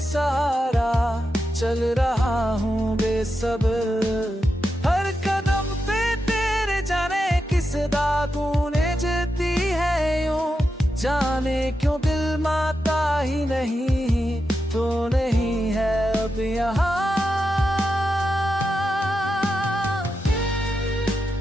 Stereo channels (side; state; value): both; normal; correlation 0.88